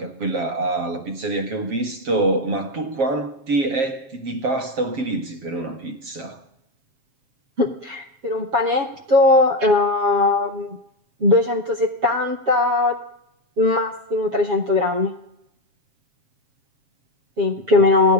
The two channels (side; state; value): left; late; 7.4 ms